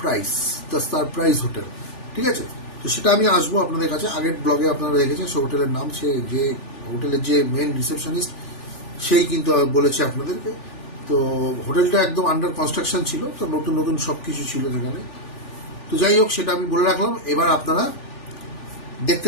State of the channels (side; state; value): right; late; 3.4 ms